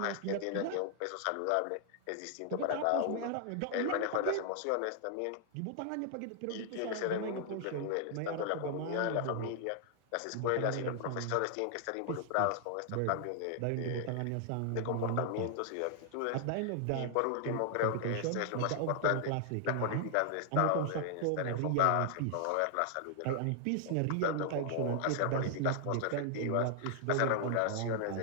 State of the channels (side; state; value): both; different; correlation -0.01